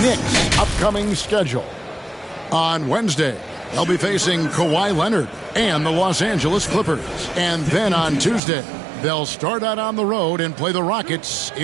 Knicks' upcoming schedule. On Wednesday, they'll be facing Kawhi Leonard and the Los Angeles Clippers. And then on Tuesday, they'll start out on the road and play the Rockets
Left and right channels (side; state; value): left; drops out; at 8.4 s